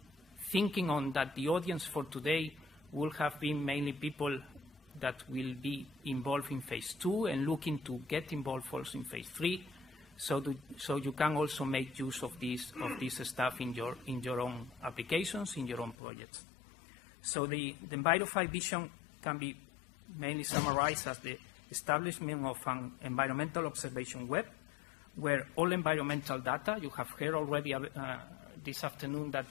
thinking on that the audience for today will have been mainly people that will be involved in phase 2 and looking to get involved also in phase 3, so you can also make use of this stuff in your own applications, in your own projects. So the ENVIROFI vision can be mainly summarized as the establishment of an environmental observation web, where all environmental data, you have heard already this afternoon that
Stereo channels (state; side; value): drops out; right; at 16.0 s